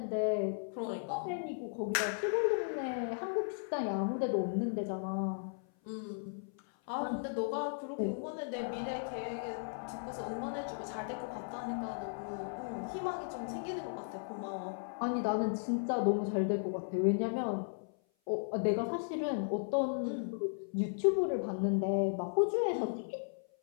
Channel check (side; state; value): right; silent; 54 dB below the other